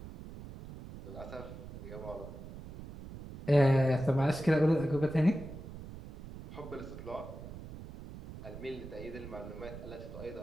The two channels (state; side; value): noise; right; rumble, 12 dB below the sound